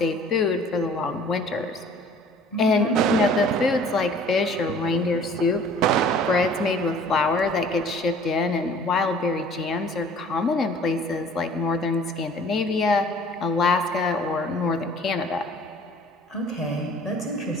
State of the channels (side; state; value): both; normal; correlation 0.51